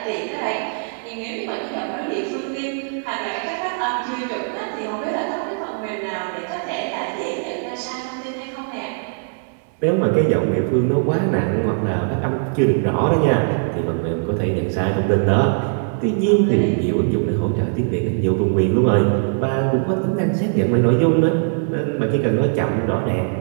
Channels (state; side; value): silent; left; digital silence